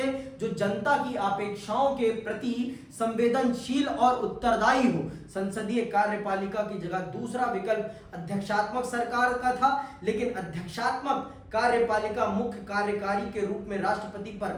जो जनता की अपेक्षाओं के प्रति संवेदनशील और उत्तरदायी हो। संसदीय कार्यपालिका की जगह दूसरा विकल्प अध्यक्षात्मक सरकार का था, लेकिन अध्यक्षात्मक कार्यपालिका मुख्य कार्यकारी के रूप में राष्ट्रपति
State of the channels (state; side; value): identical; both; correlation 1.00